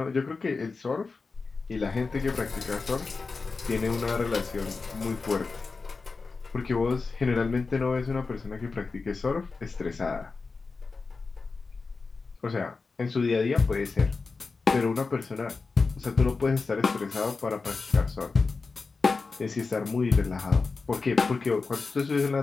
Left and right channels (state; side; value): quieter; right; 4.3 dB